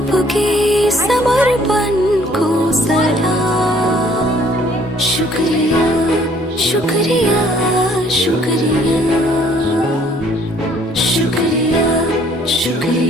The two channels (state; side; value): normal; both; correlation 0.60